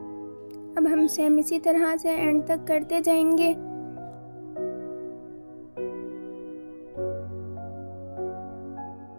अब हम सेम इसी तरह से एंड तक करते जाएंगे।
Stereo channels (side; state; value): both; inverted; correlation -1.00